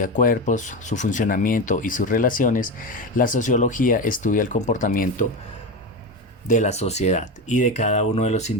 cuerpos, su funcionamiento y sus relaciones, la sociología estudia el comportamiento de la sociedad y de cada uno de los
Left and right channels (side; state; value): both; normal; correlation 0.19